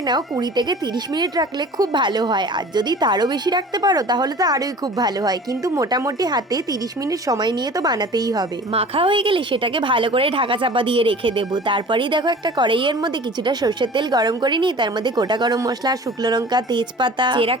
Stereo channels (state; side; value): normal; both; correlation 0.42